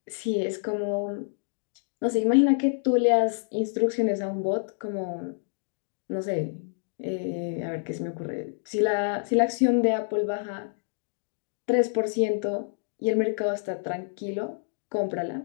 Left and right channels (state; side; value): silent; right; digital silence